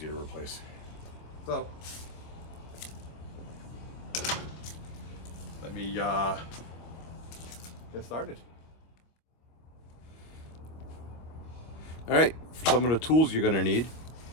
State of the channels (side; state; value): right; late; 25 ms